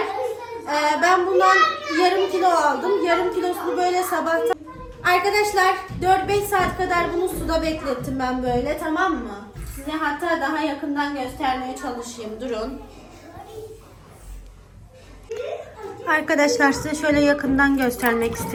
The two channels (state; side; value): identical; both; correlation 1.00